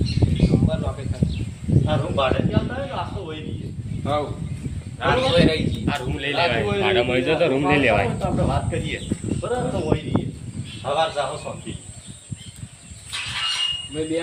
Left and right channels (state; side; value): identical; both; correlation 1.00